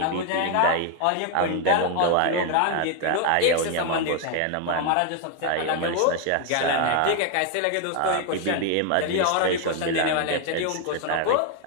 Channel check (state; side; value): different; both; correlation 0.01